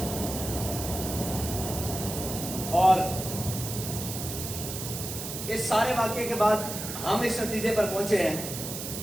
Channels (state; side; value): noise; right; hiss, 7 dB below the sound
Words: اور اس سارے واقعے کے بعد ہم اس نتیجے پر پہنچے ہیں